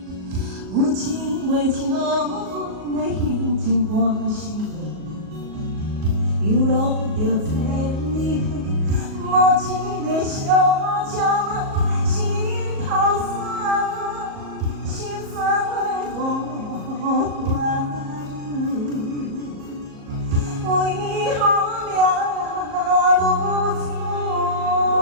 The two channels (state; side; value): late; left; 38 ms